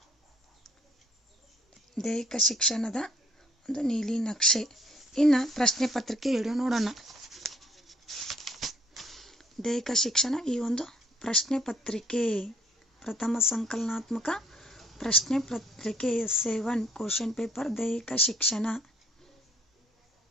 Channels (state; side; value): normal; both; correlation 0.62